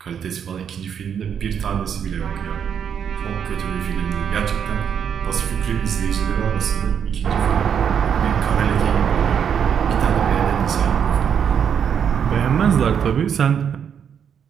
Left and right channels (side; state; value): left; quieter; 7.9 dB